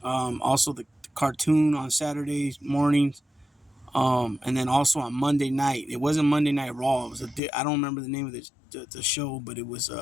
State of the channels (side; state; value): right; drops out; at 7.4 s